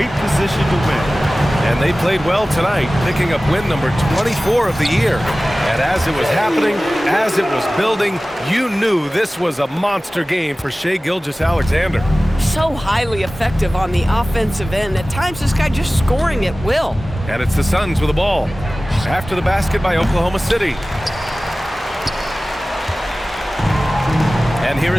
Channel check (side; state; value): both; normal; correlation 0.97